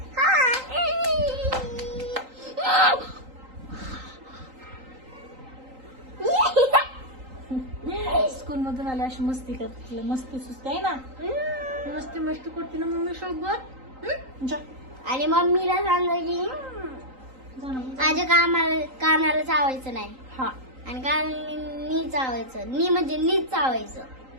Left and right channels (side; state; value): left; late; 3.8 ms